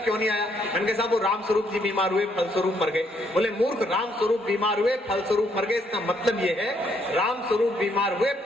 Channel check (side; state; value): both; normal; correlation 0.71